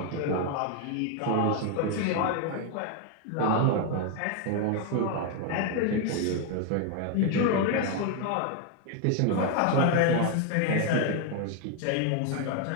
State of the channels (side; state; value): both; different; correlation 0.01